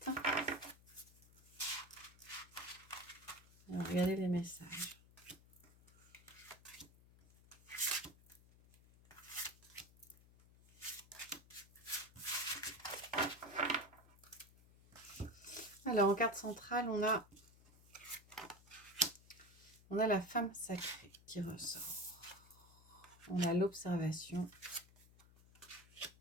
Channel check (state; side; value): noise; left; hum, 24 dB below the sound